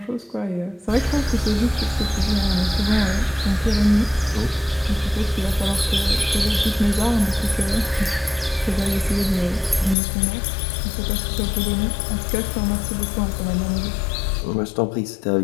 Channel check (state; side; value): drops out; right; at 10.0 s